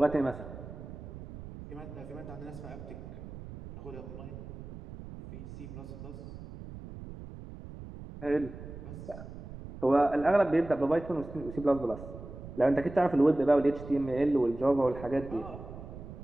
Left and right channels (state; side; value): noise; right; rumble, 12 dB below the sound